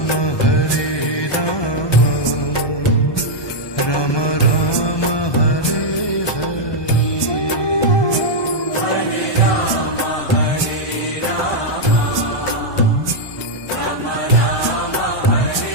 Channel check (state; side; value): late; right; 1.2 ms